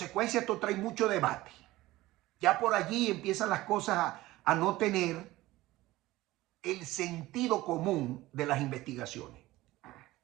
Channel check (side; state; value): left; quieter; 17.8 dB